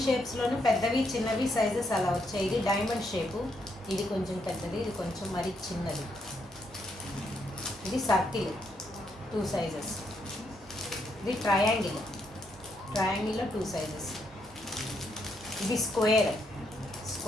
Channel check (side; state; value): both; normal; correlation 0.77